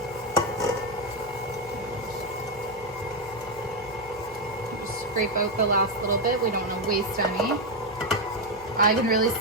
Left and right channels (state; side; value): noise; left; hum, 21 dB below the sound